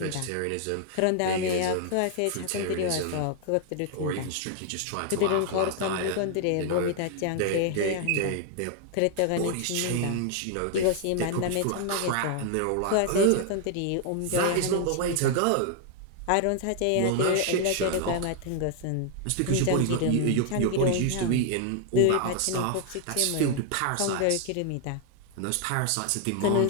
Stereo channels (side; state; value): both; different; correlation 0.00